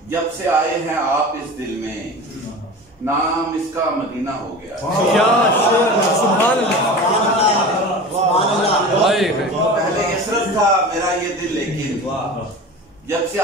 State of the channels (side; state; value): both; normal; correlation 0.33